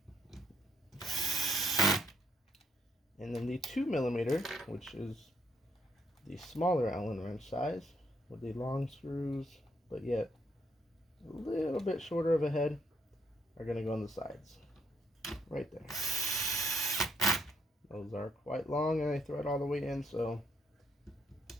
And then the 2 millimeter, which is the smaller Allen wrench size, with the long screws, but yet a little bit shorter of a head, are going to go on the sides. Right there. Those are quite long and they thread all the way in, so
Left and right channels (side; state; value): both; normal; correlation 0.71